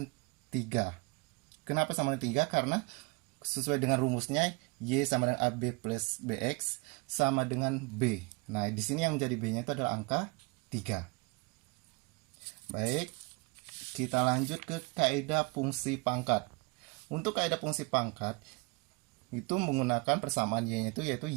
3. Kenapa sama dengan 3? Karena sesuai dengan rumusnya, Y sama dengan AB plus BX sama dengan B. Nah, di sini yang menjadi B-nya itu adalah angka 3. Baik, kita lanjut ke kaidah fungsi pangkat. Untuk kaidah fungsi pangkat, itu menggunakan persamaan Y-nya itu yaitu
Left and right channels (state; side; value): quieter; left; 28.7 dB